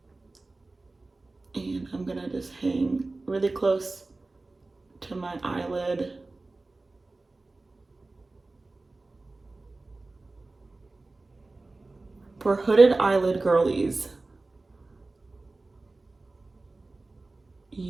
And I'm gonna just hang really close to my eyelid. For hooded eyelid girlies,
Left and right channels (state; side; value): quieter; left; 3.3 dB